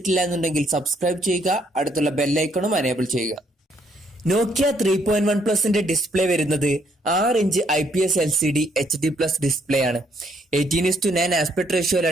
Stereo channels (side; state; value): both; normal; correlation 0.69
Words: എന്നുണ്ടെങ്കിൽ സബ്സ്ക്രൈബ് ചെയ്യുക, അടുത്തുള്ള ബെല്ലൈക്കണും എനേബിൾ ചെയ്യുക. നോക്കിയ 3.1 പ്ലസിന്റെ ഡിസ്പ്ലേ വരുന്നത് 6 inch IPS LCD HD plus display ആണ്. 18:9 ആസ്പെക്ട്